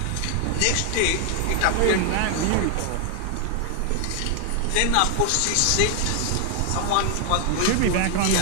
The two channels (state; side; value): different; both; correlation 0.00